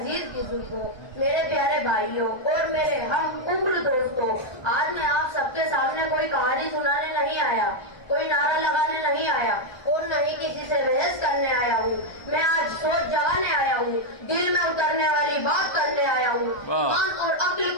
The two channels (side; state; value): right; late; 1.2 ms